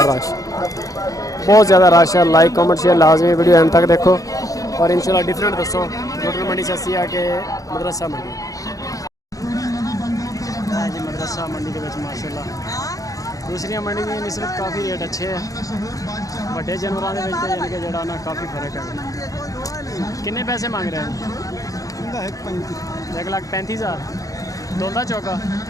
रश, बहुत ज़्यादा रश है। लाइक कमेंट शेयर लाजमी वीडियो एंड तक देखो और इंशाल्लाह डिफरेंट दसो लुडर मंडी से असी आके मदरसा मंडी जी। मदरसा मंडी के माशाल्लाह दूसरी मंडी की निस्बत काफ़ी रेट अच्छे है। बड़े जानवरों के यानी कि जड़ा ना काफ़ी फर्क है। किन्ने पैसे मांग रहे हैं? 1,35,000 दोंदा चौका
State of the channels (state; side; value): late; right; 0.17 ms